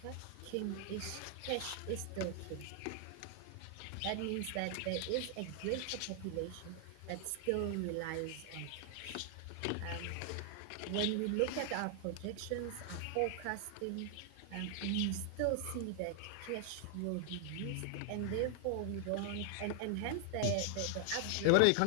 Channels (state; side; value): different; both; correlation 0.00